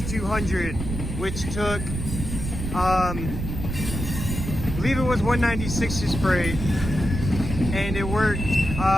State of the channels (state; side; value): noise; right; rumble, 5 dB below the sound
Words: which took, I believe it was 196's freight, and it worked